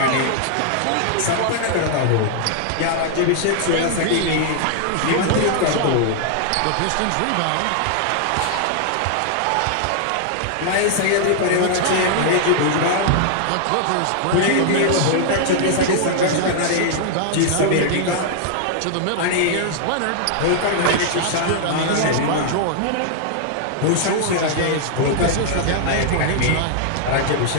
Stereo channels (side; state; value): both; different; correlation -0.01